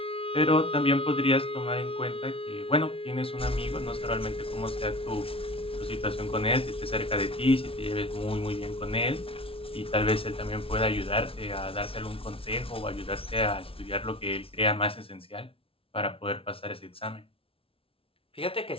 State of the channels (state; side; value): late; right; 0.26 ms